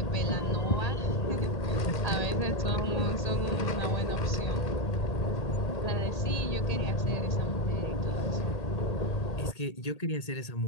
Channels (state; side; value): late; right; 1.8 ms